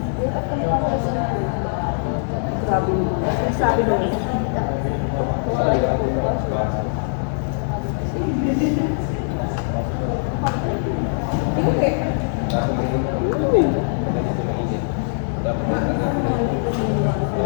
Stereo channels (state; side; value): silent; right; digital silence